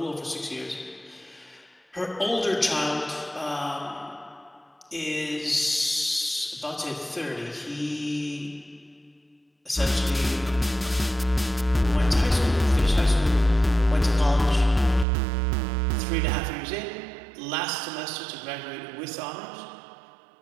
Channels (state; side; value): drops out; left; at 15.1 s